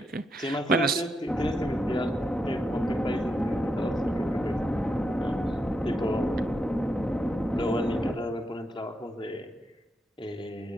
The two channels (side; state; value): both; normal; correlation 0.83